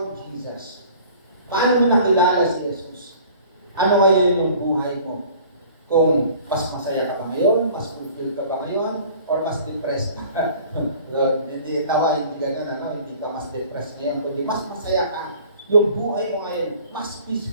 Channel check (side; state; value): both; inverted; correlation -0.48